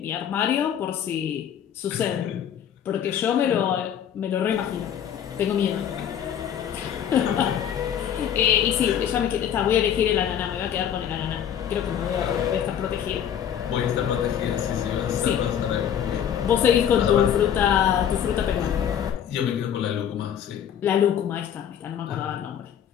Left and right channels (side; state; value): right; quieter; 9.3 dB